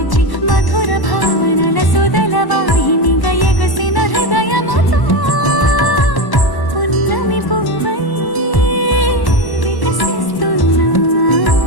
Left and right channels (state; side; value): late; right; 1.0 ms